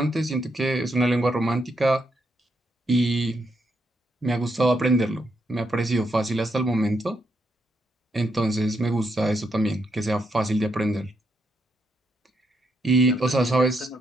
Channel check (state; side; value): normal; both; correlation 0.79